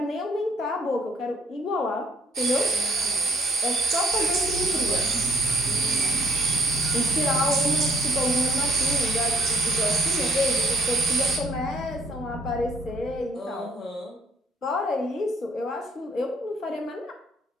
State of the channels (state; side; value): normal; both; correlation 0.63